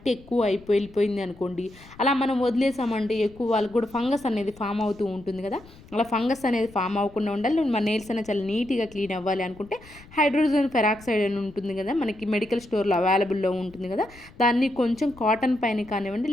ఎక్కువ వెళ్ళిపోయింది అనుకోండి, అలా మనం వదిలేసామంటే ఎక్కువ వాళ్ళకి కూడా ఫంగస్ అనేది ఫామ్ అవుతూ ఉంటుంది కదా. అలా ఫంగస్ అనేది ఫామ్ అవ్వకుండా ఉండాలి, మన నెయిల్స్ అనేది చాలా నీట్గా క్లీన్ అవ్వాలి అనుకుంటే హైడ్రోజన్ పెరాక్సైడ్ అని ఉంటుంది కదా, మనకి మెడికల్ స్టోర్లో అవైలబుల్లో ఉంటుంది కదా, దాన్ని కొంచెం కాటన్ పైన కానివ్వండి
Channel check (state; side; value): noise; left; rumble, 22 dB below the sound